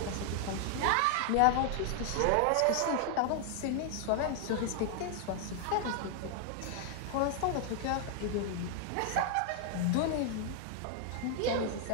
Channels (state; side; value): different; both; correlation 0.00